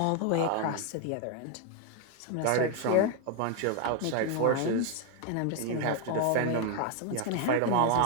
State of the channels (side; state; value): both; different; correlation 0.00